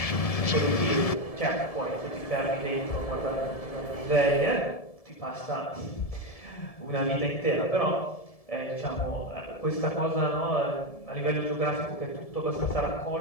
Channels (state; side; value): late; right; 1.7 ms